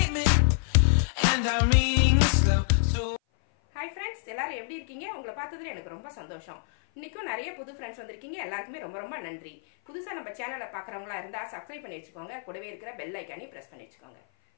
and I'm reading it slow. So Hi friends, எல்லாரும் எப்படி இருக்கீங்க? உங்களை பார்த்ததுல எனக்கு ரொம்ப சந்தோஷம். இன்னைக்கும் நிறைய புது ஃப்ரெண்ட்ஸ் வந்திருக்கீங்க. எல்லாருக்குமே ரொம்ப ரொம்ப நன்றி. புதுசா நம்ம சேனலை பார்க்குறவங்களா இருந்தா சப்ஸ்கிரைப் பண்ணி வச்சுக்கோங்க. கூடவே இருக்கிற பெல் ஐகானை பிரஸ் பண்ணி வச்சுக்கோங்க.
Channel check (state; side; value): silent; right; 56 dB below the other